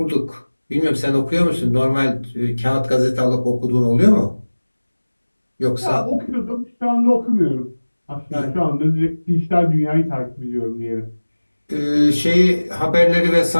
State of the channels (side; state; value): both; inverted; correlation -1.00